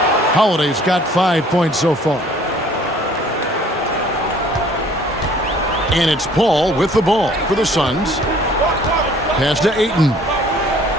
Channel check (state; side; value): normal; both; correlation 0.55